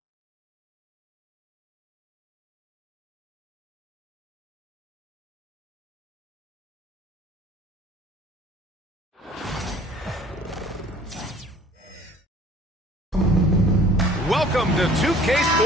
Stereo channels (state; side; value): normal; both; correlation 0.52